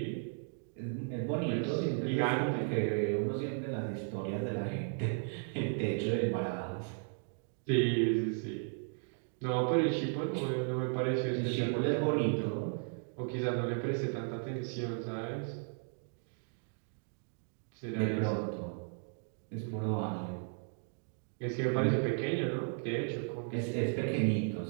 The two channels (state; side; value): silent; left; 54 dB below the other